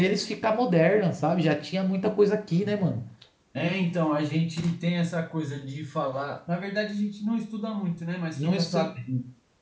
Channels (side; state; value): both; identical; correlation 1.00